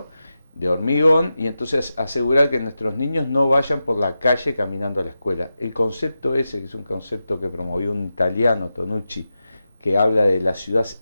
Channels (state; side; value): inverted; both; correlation -0.91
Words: de hormigón, y entonces asegurar que nuestros niños no vayan por la calle caminando a la escuela. El concepto ese, que es un concepto que promovió un italiano, Tonucci, que habla de la ciudad